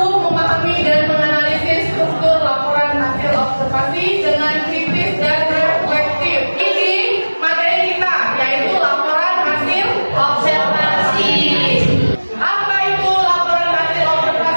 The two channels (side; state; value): both; inverted; correlation -1.00